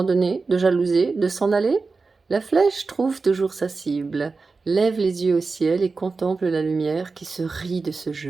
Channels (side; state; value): left; quieter; 4.2 dB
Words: de jalouser, de s'en aller? La flèche trouve toujours sa cible, lève les yeux au ciel et contemple la lumière qui se rit de ce